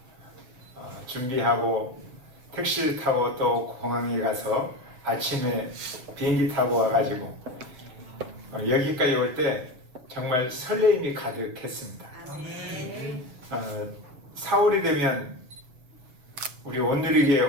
준비하고 택시를 타고 또 공항에 가서 아침에 비행기 타고 와가지고 여기까지 올 때 정말 설레임이 가득했습니다. 4월이 되면 우리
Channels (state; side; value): late; left; 7.8 ms